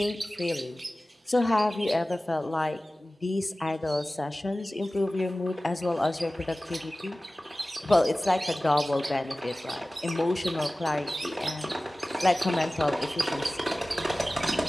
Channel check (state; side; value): normal; both; correlation 0.97